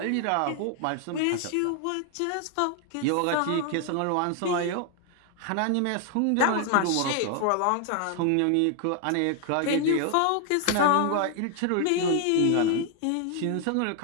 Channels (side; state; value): both; different; correlation 0.00